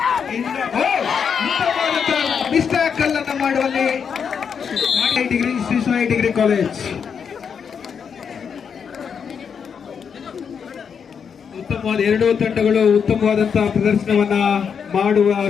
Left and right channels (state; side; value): quieter; right; 6.8 dB